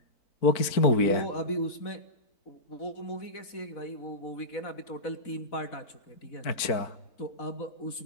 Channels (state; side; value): late; right; 4.5 ms